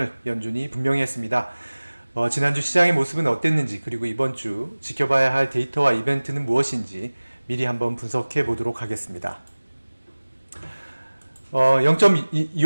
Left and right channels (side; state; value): both; inverted; correlation -1.00